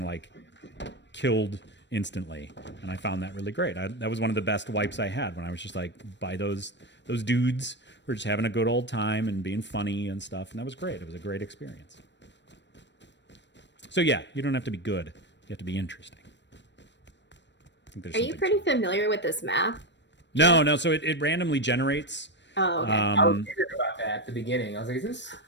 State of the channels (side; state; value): right; late; 0.52 ms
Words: like killed instantly. And I found that really great. That was one of the best wipes I had when I was just like by those dudes who were just having a good old time and being funny and stuff. And that was great. It was a great experience. So yeah, you don't have to be good. You have to be interesting. I think there's Are you pretty familiar with this map? No. So it randomly generates. Oh, okay. I was curious about that at the beginning. I was like, is this?